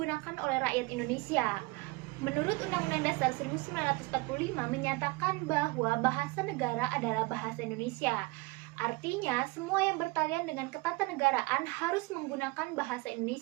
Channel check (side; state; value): left; quieter; 24.2 dB